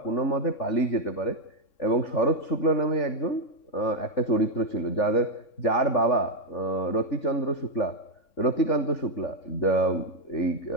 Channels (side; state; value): right; late; 3.6 ms